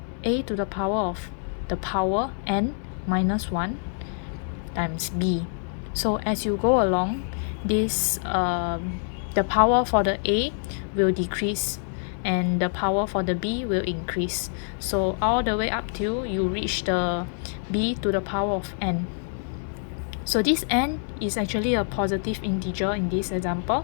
a to the power of the power n minus 1 times b. So as you go along, this the power for the a will decrease and the power for the b will increase. So all the way up till you reach the b to the power of n. So this n is actually a positive integer in this example.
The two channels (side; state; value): right; silent; digital silence